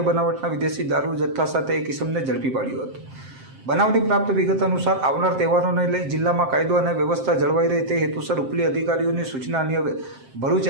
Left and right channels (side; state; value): left; late; 7.6 ms